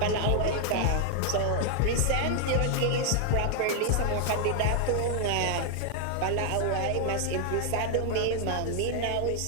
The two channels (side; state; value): both; different; correlation 0.00